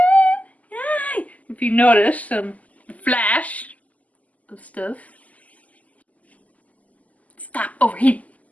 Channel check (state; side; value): late; right; 0.074 ms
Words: it. Yay! If you notice, some flash of stuff. Stop overheating.